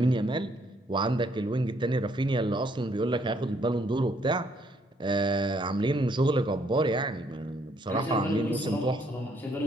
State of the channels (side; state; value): both; normal; correlation 0.68